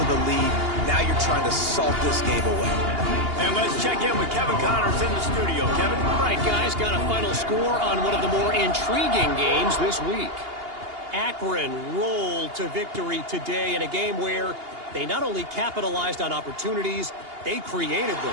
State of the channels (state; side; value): late; left; 2.8 ms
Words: the lead. Now you're trying to salt this game away. And let's check in with Kevin Connors in the studio. Kevin? All right, guys, got a final score on one of the more intriguing games this week. Akron rolled to victory today in a game where they not only capitalized on opportunities, they created